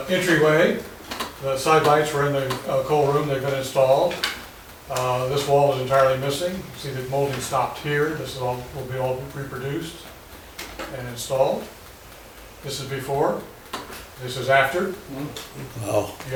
entryway. The side lights were in the coal room, they've been installed. This wall is entirely missing. You see the molding stopped here. This is all, will be all reproduced and installed. This is before. This is after. Wow.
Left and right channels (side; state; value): both; identical; correlation 1.00